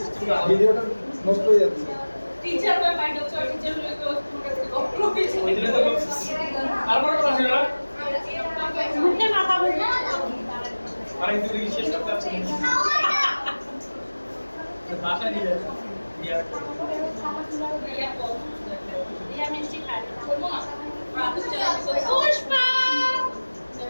ভিডিওটা নষ্ট হয়ে যাচ্ছে টিচার হয়ে ভাই টিচার হয়ে তো তোমাকে গপ্প কিছু এইটা তো তারপর কথা ছিল না মুখে মাথা বলবে আরে তুই শেষ করতে পারছিস বাসা নিয়ে ইয়া মিষ্টি খাই করবো না পুষ্পা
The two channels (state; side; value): inverted; both; correlation -1.00